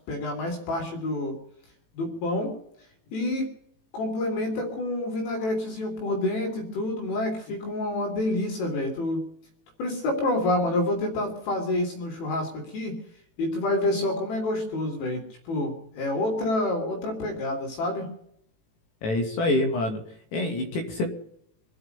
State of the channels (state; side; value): late; right; 18 ms